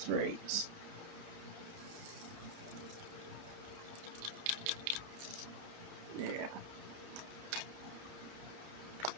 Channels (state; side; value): late; left; 30 ms